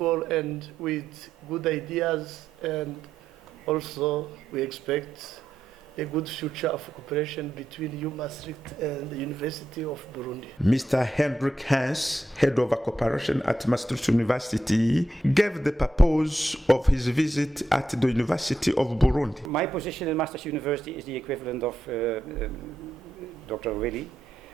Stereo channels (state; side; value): normal; both; correlation 0.83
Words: and with good ideas, and also we expect a good future of cooperation between Maastricht and the University of Burundi. Mr. Hendrik Hans, head of cooperation at Maastricht University, gave the purpose of his visit at the University of Burundi. My position in Maastricht University is the equivalent of Dr. Willy.